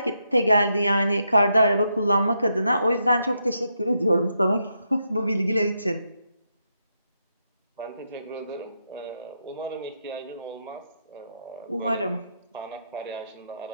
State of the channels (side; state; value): both; inverted; correlation -0.81